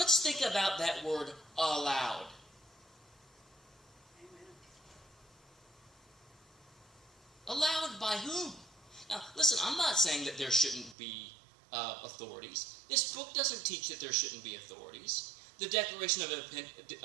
think about that word, allowed. Allowed by whom? Now, listen, I'm not saying that there shouldn't be authorities. This book doesn't teach that there shouldn't be authorities. The Declaration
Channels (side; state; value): left; drops out; at 11.0 s